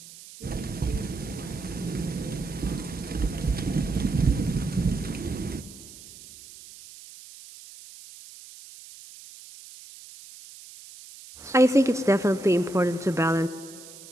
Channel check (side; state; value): right; noise; hiss, 18 dB below the sound